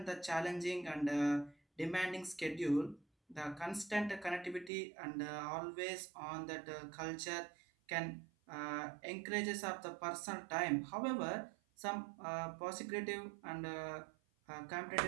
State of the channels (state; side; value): drops out; left; at 4.7 s